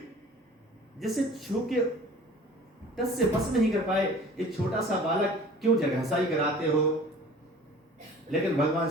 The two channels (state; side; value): normal; both; correlation 0.46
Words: जिसे छू के टस से बस नहीं कर पाए, एक छोटा सा बालक क्यों जगहसाई कराते हो। लेकिन भगवान